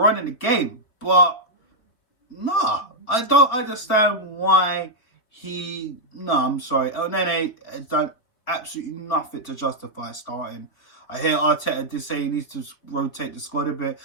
on in the game. But, nah. I don't understand why I'm sorry. El Nene has done absolutely nothing to justify starting. I hear Arteta did say he needs to rotate the squad a bit.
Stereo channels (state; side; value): late; right; 4.0 ms